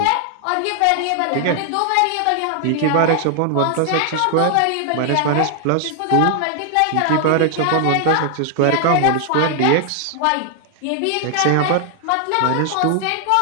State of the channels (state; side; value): different; both; correlation 0.00